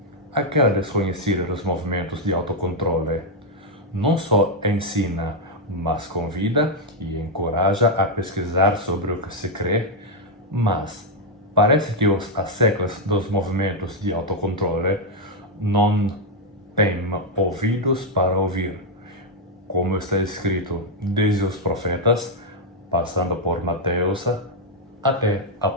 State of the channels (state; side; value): normal; both; correlation 0.00